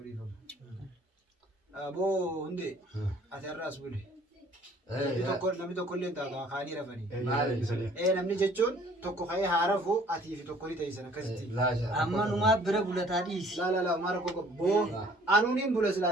dhiifama aboo hundee ati har'aas bule namni tokko illee taata kaanii rafanii namni jechuun tokko ka'ee haa rafu atii fi tokko ni ta'isan akkasitti amma numaa bira bulataa dhiisi. laa maara koko boo anuuniin bula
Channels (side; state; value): both; normal; correlation 0.56